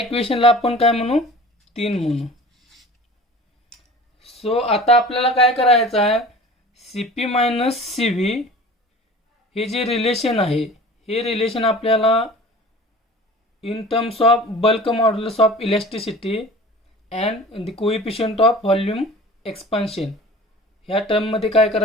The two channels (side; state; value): both; normal; correlation 0.42